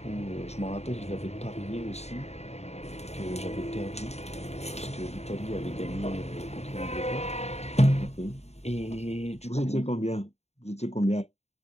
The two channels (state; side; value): late; right; 0.31 ms